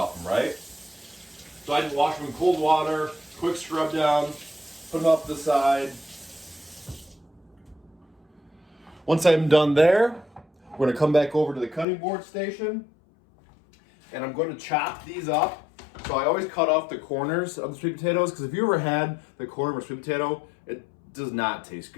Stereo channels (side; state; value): right; drops out; at 11.9 s